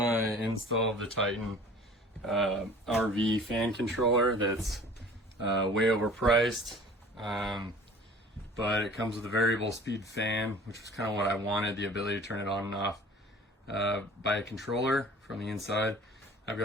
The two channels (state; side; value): normal; both; correlation 0.46